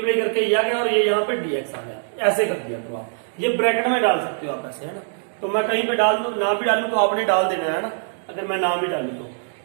करके ये आ गया और ये यहाँ पे dx आ गया, ऐसे कर दिया। तो आप ये ब्रैकेट में डाल सकते हो आप ऐसे, है ना। तो मैं कहीं पे डाल दूं ना भी डालू तो आपने डाल देना है ना, अगर मैं ना भी डालू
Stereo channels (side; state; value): left; silent; digital silence